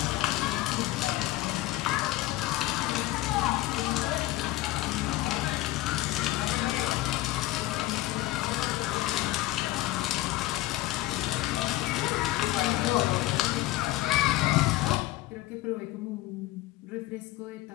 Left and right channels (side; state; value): right; quieter; 17.0 dB